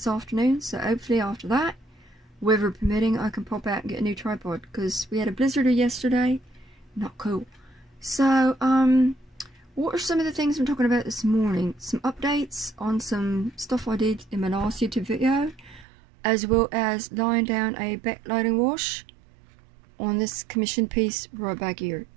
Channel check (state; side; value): drops out; left; at 15.9 s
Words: afternoon, so hopefully after that, weather permitting, I can pop out and get a new tripod, because we had a blizzard yesterday. Not cool. So what are some of the things I'm talking about this morning? Some updates on some stuff I did in my last YouTube video, as well as laying down a backlighting wash on this commission piece right back here.